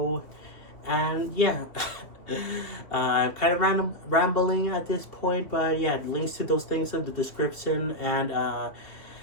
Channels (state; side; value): late; right; 2.5 ms